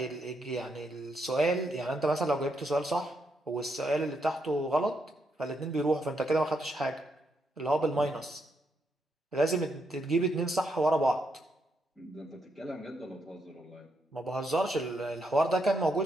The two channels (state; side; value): normal; both; correlation 0.79